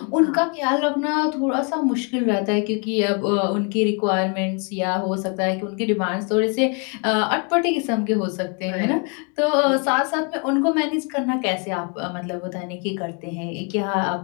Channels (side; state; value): right; quieter; 36.0 dB